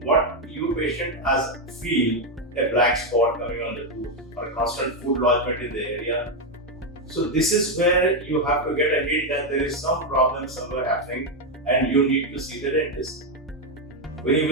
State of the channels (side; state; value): both; normal; correlation 0.04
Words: what you patient has feel a black spot coming on the tooth or a constant food lodgement in the area. So this is where you have to get a hint that there is some problem somewhere happening and you need to see the dentist. When you